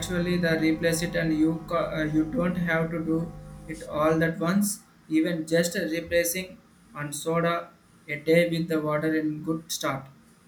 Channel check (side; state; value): both; identical; correlation 1.00